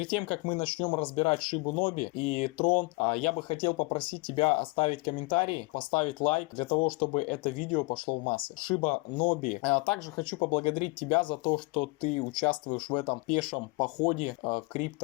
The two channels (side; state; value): right; quieter; 26.5 dB